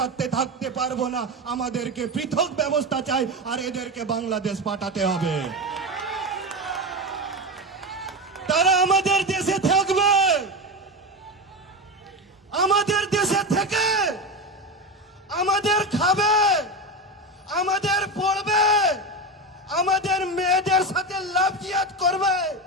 থাকতে পারবো না, আমাদেরকে পৃথক ব্যবস্থা চাই আর এদেরকে বাংলাদেশ পাঠাতে হবে। তারা আমাদের দেশে থাকবে, আমাদের দেশে থেকে আমাদের খাবে, আমাদের পড়বে, আমাদের মেয়েদের সাথে লাভ জিয়াদ করবে,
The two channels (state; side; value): normal; both; correlation 0.19